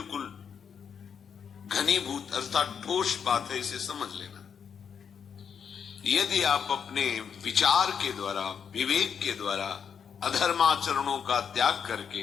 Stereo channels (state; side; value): quieter; right; 7.2 dB